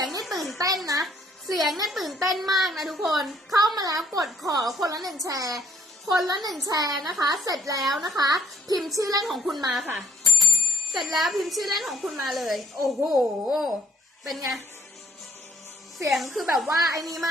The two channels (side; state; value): both; normal; correlation 0.65